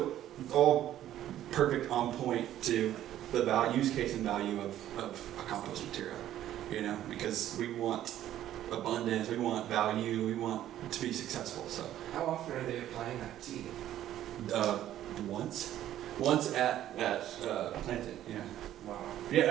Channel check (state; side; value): quieter; left; 12.3 dB